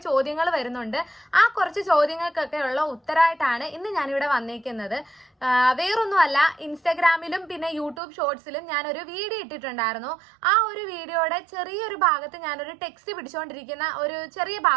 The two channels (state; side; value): drops out; left; at 8.0 s